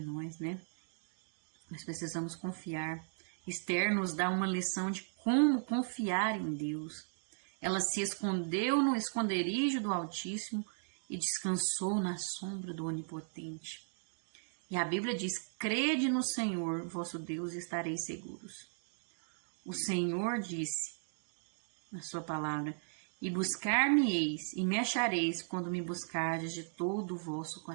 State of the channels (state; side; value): silent; left; digital silence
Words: nós, né? Nós precisamos confiar. Esther nos dá uma lição de como confiar em Deus. Ela se escondeu no esconderijo do Altíssimo e descansou na sombra do Onipotente. E a Bíblia diz: crede no Senhor, vosso Deus, e estareis seguros. O Senhor disse na sua palavra: e buscar-me-eis e me achareis quando me buscardes de todo o vosso